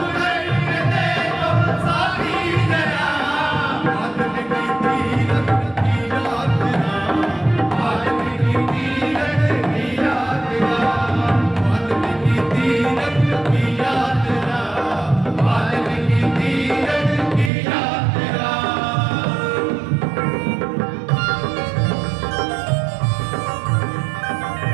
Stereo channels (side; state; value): left; drops out; at 17.5 s